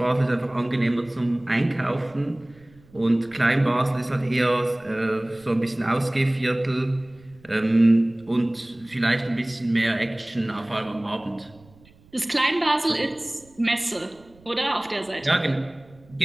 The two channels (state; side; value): noise; right; rumble, 27 dB below the sound